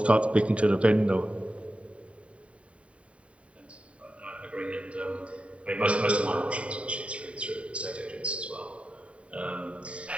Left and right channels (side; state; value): left; late; 0.063 ms